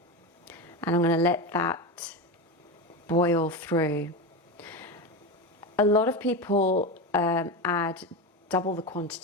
And I'm going to let that boil through. A lot of people add double the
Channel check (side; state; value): both; normal; correlation 0.19